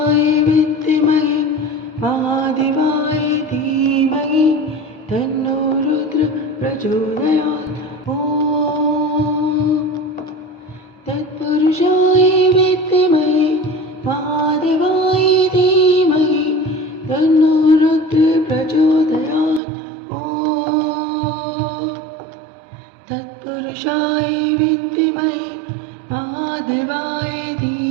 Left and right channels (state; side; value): drops out; left; at 19.6 s